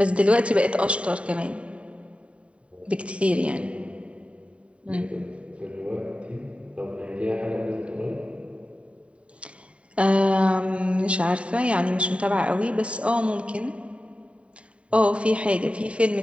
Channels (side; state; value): left; late; 0.062 ms